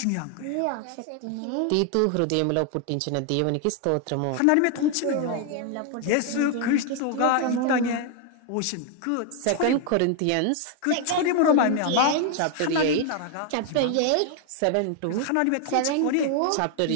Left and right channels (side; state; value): both; different; correlation 0.01